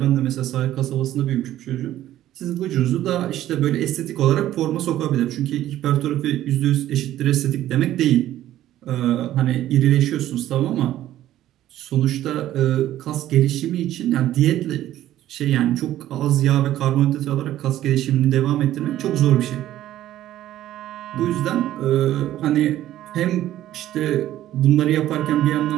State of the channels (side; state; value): left; quieter; 13.3 dB